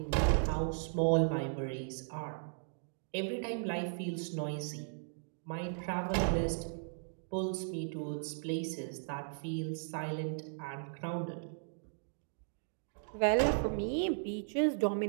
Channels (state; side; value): silent; left; digital silence